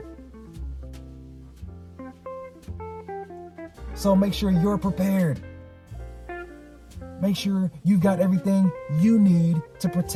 So make sure you're prepared. Make sure you've got everything you need to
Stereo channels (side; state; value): both; identical; correlation 1.00